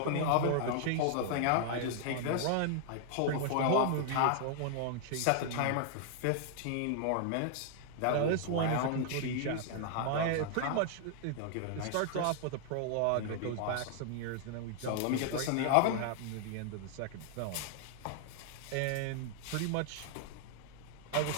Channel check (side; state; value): both; different; correlation 0.00